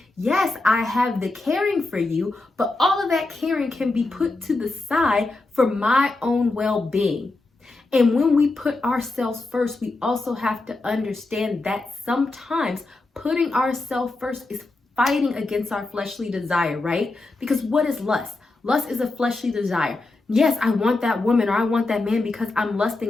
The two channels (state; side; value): quieter; right; 3.2 dB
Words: yes, I have the caring for you, but all of that caring can be put to the side for my own well-being. And when we put ourselves first, we also have to understand that sometimes putting ourselves first is fighting against our fleshly desire, right? Because what is lust? Lust is a fleshly desire. Yes, I want that woman or I want that man because I'm